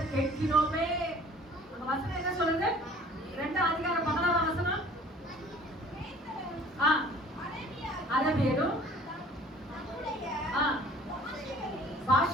கேட்கிறோமே. அந்த வசனம் என்ன சொல்லுங்க? 2ஆம் அதிகாரம் 11ஆம் வசனம். அரபியரும்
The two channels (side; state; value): both; normal; correlation 0.51